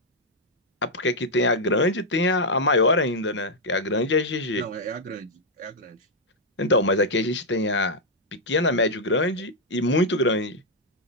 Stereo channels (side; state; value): both; normal; correlation -0.02